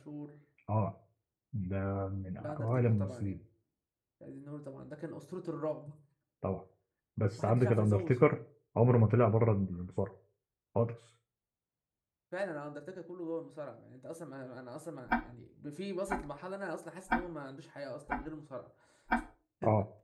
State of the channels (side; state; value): both; identical; correlation 1.00